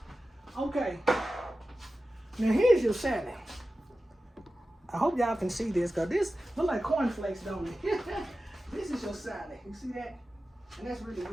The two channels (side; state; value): both; normal; correlation 0.94